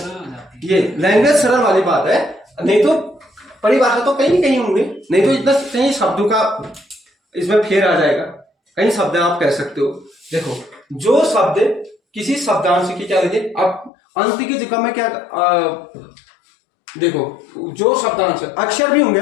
हो जाती है। ये लैंग्वेज सरल वाली बात है, नहीं तो परिभाषा तो कहीं कहीं होंगे, नहीं तो इतना कहीं शब्दों का इसमें फेर आ जाएगा। कई शब्द आप कह सकते हो। देखो, जो शब्द किसी शब्दांश की क्या लगे, अब अंत की जगह में क्या देखो, जो शब्दांश अक्षर भी होंगे,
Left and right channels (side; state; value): right; drops out; at 13.9 s